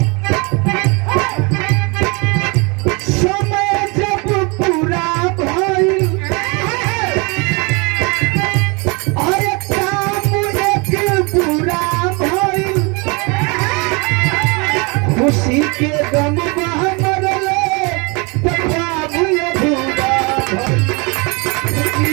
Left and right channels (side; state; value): left; quieter; 29.5 dB